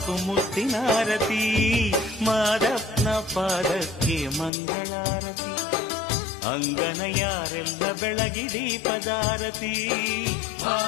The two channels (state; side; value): drops out; right; at 4.5 s